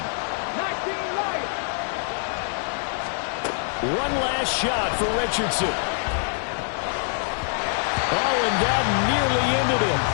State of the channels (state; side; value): silent; right; 62 dB below the other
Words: One last shot for Richardson. Oh, and that nearly ended it.